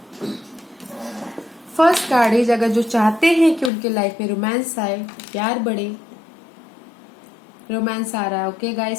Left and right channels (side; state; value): right; drops out; at 3.7 s